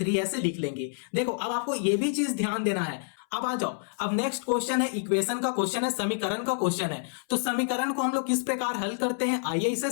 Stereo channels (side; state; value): right; silent; 59 dB below the other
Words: ऐसे लिख लेंगे। देखो अब आपको यह भी चीज ध्यान देना है। अब आ जाओ, अब नेक्स्ट क्वेश्चन है इक्वेशन का क्वेश्चन है, समीकरण का क्वेश्चन है। तो समीकरण को हम लोग किस प्रकार हल करते हैं आइए इसे